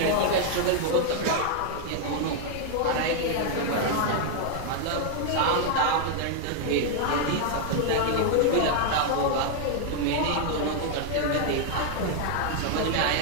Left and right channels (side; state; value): both; different; correlation 0.00